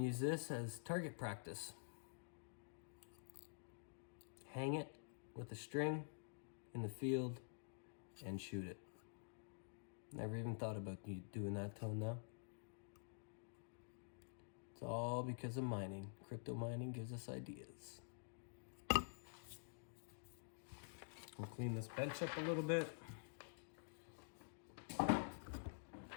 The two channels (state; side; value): silent; right; digital silence